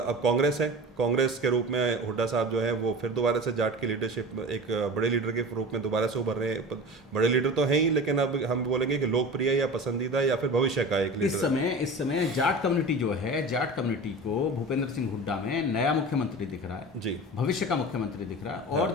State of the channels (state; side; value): normal; both; correlation 0.34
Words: कांग्रेस है, कांग्रेस के रूप में हुड्डा साहब जो है वो फिर दोबारा से जाट की लीडरशिप, एक बड़े लीडर के रूप में दोबारा से उभर रहे हैं। बड़े लीडर तो हैं ही, लेकिन अब हम बोलेंगे कि लोकप्रिय या पसंदीदा या फिर भविष्य का एक लीडर। इस समय जाट कम्युनिटी जो है, जाट कम्युनिटी को भूपेंद्र सिंह हुड्डा में नया मुख्यमंत्री दिख रहा है जी, भविष्य का मुख्यमंत्री दिख रहा है।